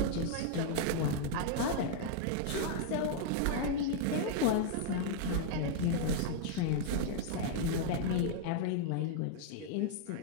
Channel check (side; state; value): both; different; correlation -0.01